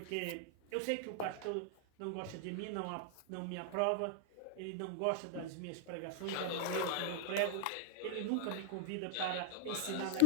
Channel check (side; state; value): both; different; correlation 0.00